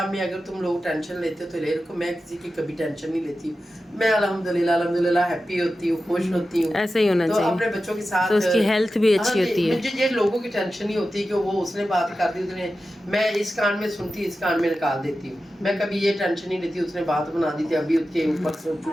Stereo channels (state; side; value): normal; both; correlation 0.93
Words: में। अगर तुम लोग टेंशन लेते हो तो ले रखो, मैं किसी की कभी टेंशन नहीं लेती हूँ। मैं अल्हम्दुलिल्लाह हैप्पी होती हूँ, खुश होती हूँ। ऐसे ही होना चाहिए, अपने बच्चों के साथ तो उसकी हेल्थ भी अच्छी होती है। मुझे ये लोगों की टेंशन नहीं होती कि वो उसने बात कर दी, उसने, मैं इस कान में सुनती इस कान में निकाल देती हूँ। मैं कभी ये टेंशन नहीं लेती उसने बात बना दी थी, अभी उसके ऊपर